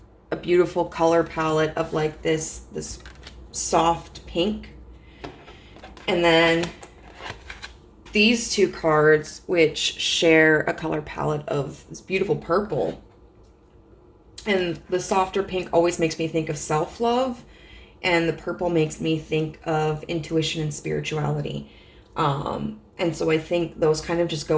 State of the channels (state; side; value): identical; both; correlation 1.00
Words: a beautiful color palette of like this soft pink, and then these two cards which share a color palette of this beautiful purple. And the softer pink always makes me think of self-love, and the purple makes me think of intuition and spirituality. And so I think those kind of just